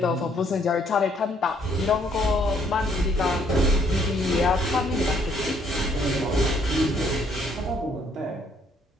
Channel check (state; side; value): normal; both; correlation 0.66